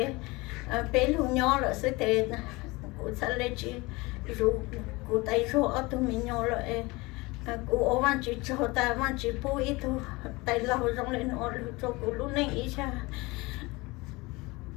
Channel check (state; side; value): quieter; right; 23.6 dB